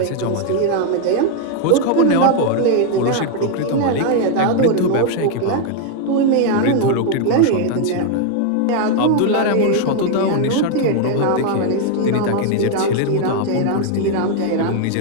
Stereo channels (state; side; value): different; both; correlation 0.01